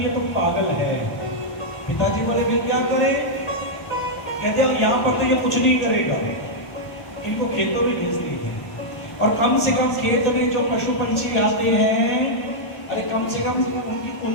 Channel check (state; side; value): late; right; 1.1 ms